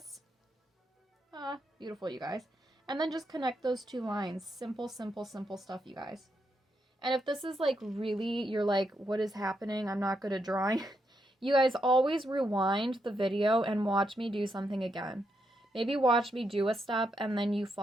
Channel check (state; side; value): normal; both; correlation 0.81